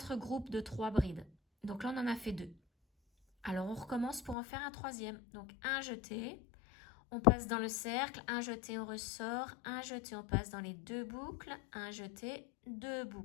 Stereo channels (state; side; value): drops out; right; at 4.4 s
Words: groupes de 3 brides. Donc là, on en a fait 2. Alors, on recommence pour en faire un 3e. Donc, un jeté, on passe dans le cercle, un jeté, on ressort, un jeté, on passe dans les 2 boucles, un jeté, 2